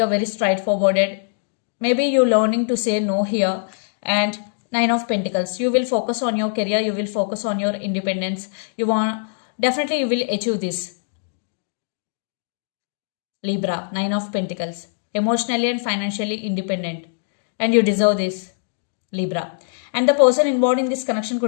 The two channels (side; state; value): right; silent; digital silence